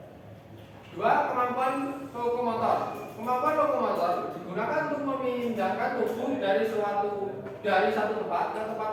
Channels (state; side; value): identical; both; correlation 1.00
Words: 2. Kemampuan lokomotor. Kemampuan lokomotor digunakan untuk memindahkan tubuh dari satu tempat ke tempat